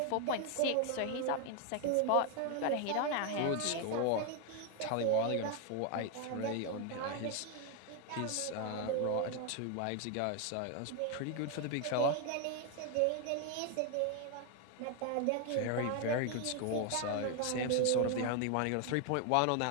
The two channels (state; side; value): different; both; correlation 0.01